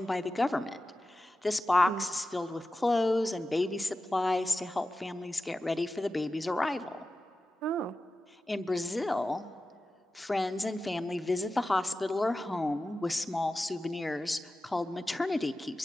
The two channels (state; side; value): normal; both; correlation 0.94